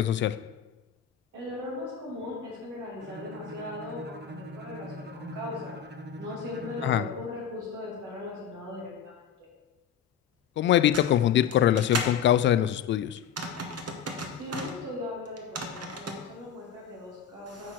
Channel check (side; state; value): right; quieter; 8.3 dB